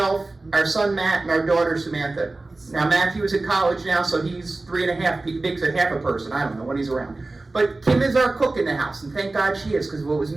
our son Matt, and our daughter Samantha. Now Matthew is in college now, so he's 3.5, makes a half a person. I don't know when he's around. But Kim is our cook in the house, and thank God she is, because if it was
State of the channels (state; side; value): quieter; left; 3.2 dB